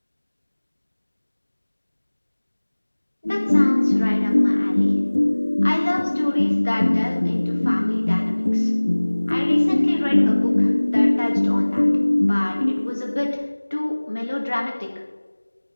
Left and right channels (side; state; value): both; inverted; correlation -1.00